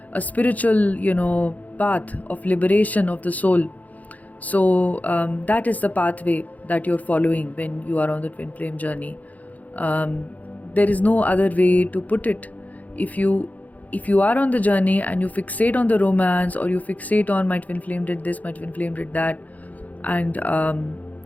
a spiritual path of liberation of the soul. So that is the pathway that you're following when you are on the twin flame journey. There is no other way to put it. If you are on the journey and you fixate on the romance, or you fixate on my twin flame did this, my twin flame did that, and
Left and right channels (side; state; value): right; late; 0.077 ms